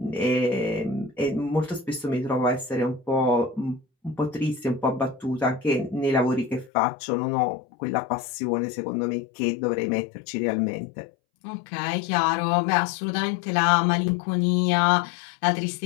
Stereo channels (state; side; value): drops out; right; at 6.7 s